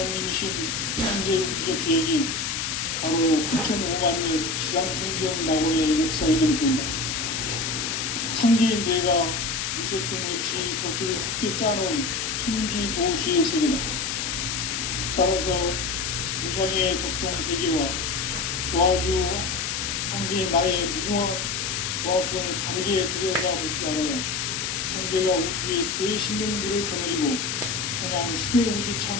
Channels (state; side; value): noise; left; hiss, 1 dB below the sound